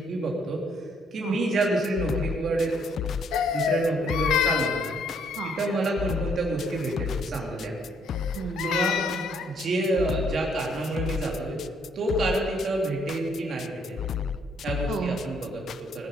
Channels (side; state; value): both; normal; correlation 0.67